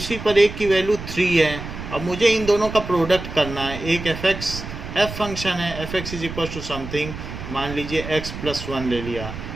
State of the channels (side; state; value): right; noise; rumble, 9 dB below the sound